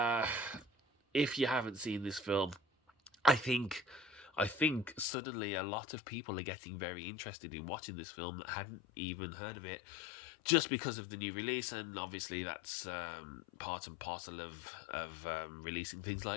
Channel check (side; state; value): right; drops out; at 5.1 s